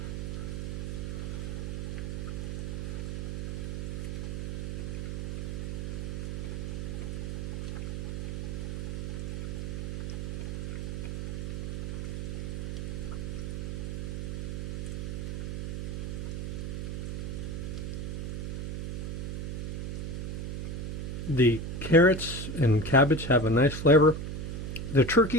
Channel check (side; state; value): right; noise; hum, 3 dB below the sound